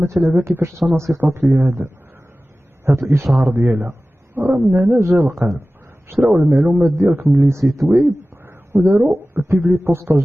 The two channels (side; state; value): both; normal; correlation 0.96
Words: تلعبها كيفاش تنصيفط لي هذا الاشهار ديالها. راه من هنا جا القلب. شراو المعلومات ديالك من لي سيت ويب وداروا البيبلي بوستاج